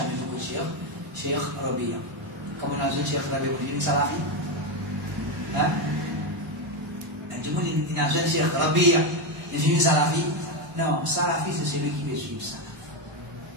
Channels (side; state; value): both; normal; correlation 0.09